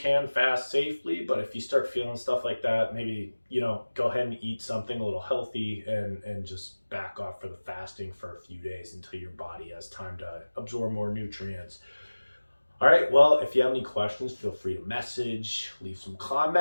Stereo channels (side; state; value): both; inverted; correlation -1.00